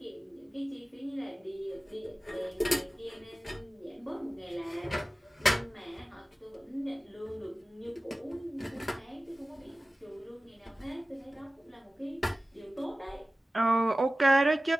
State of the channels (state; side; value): normal; both; correlation 0.96